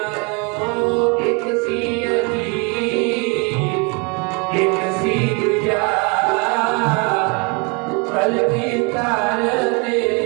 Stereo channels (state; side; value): quieter; left; 32.1 dB